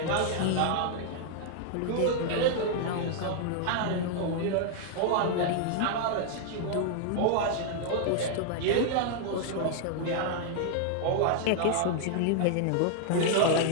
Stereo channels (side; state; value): both; different; correlation 0.00